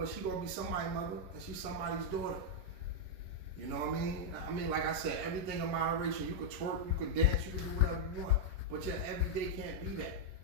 she gonna be somebody's mother, and she's somebody's daughter. You know what I mean? I mean, like I said, everything in moderation. You could twerk, you could dance, you could do whatever you want. But your everyday can't be that.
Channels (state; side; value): late; left; 10 ms